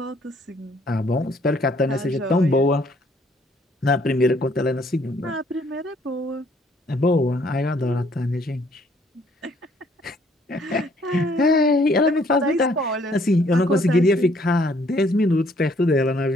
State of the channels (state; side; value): normal; both; correlation 0.64